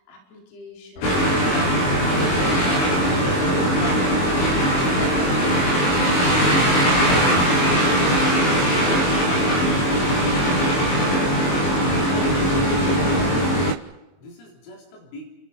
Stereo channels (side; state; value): right; late; 22 ms